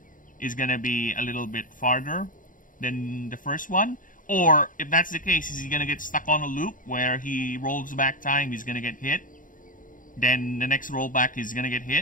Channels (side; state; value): right; late; 0.39 ms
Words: is going to be a little bit farther than the first one. Or if that's the case, is he going to get stuck on a loop where he rolls back time, he's going to get hit. Then the next rollback he's gonna get